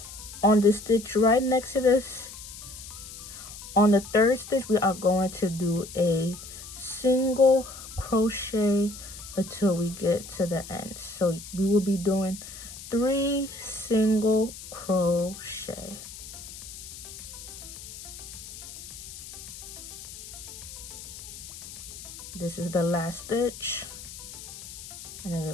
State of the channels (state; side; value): noise; left; hiss, 13 dB below the sound